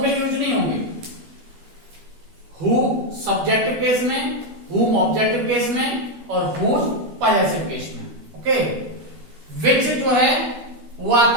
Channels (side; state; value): left; late; 13 ms